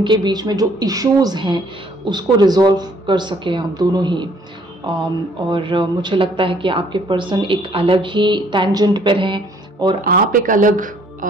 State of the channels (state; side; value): normal; both; correlation 0.62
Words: बीच में जो इश्यूज हैं उसको रिजॉल्व कर सकें आप दोनों ही। और मुझे लगता है कि आपके पर्सन एक अलग ही टेंजेंट पर हैं और आप एक अलग